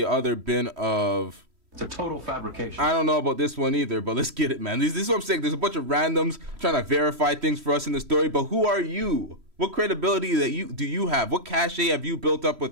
other bin of... It's a total fabrication. I don't know about this one either, but let's get it, man. This is what I'm saying. There's a bunch of randoms trying to verify things for us in the story, but who are you? What credibility do you have? What cachet have you built up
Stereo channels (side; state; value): left; late; 3.1 ms